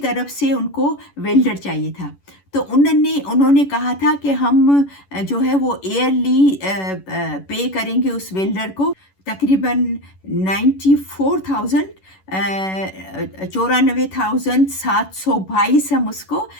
से उनको वेल्डर चाहिए था। तो उन्होंने कहा था कि हम जो है वो ईयरली पे करेंगे उस वेल्डर को तकरीबन 94,000 94,722 हम उसको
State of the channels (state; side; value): late; right; 11 ms